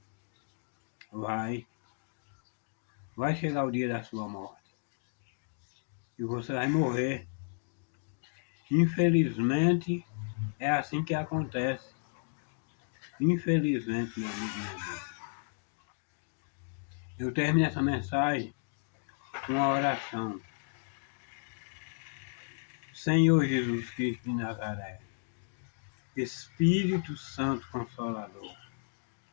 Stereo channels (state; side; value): silent; right; digital silence